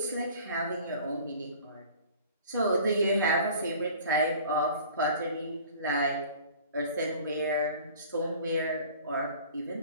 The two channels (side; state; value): both; inverted; correlation -0.46